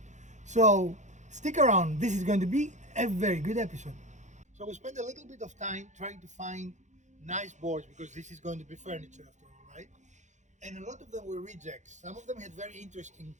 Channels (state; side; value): late; left; 0.35 ms